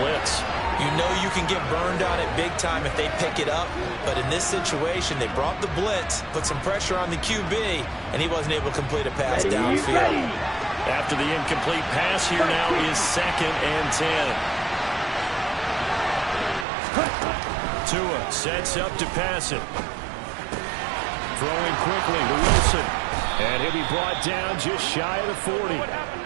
You know you can get burned on it big time if they pick it up. But in this situation, they brought the blitz, put some pressure on the QB, and he wasn't able to complete a pass downfield. After the incomplete pass, here now is 2nd and 10. Tua sets up to pass it. Throwing quickly to Wilson. And he'll be brought down just shy of the 40.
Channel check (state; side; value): drops out; left; at 16.7 s